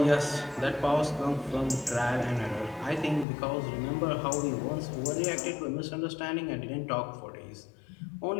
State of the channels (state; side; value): drops out; right; at 3.2 s